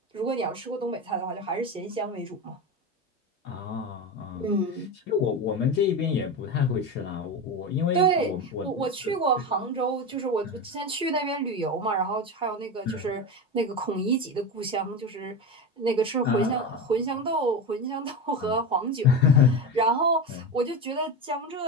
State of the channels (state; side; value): normal; both; correlation 0.21